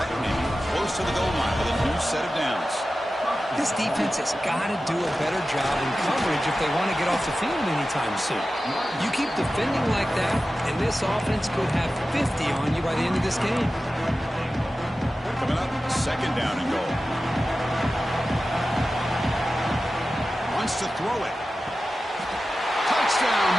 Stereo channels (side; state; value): both; normal; correlation 0.94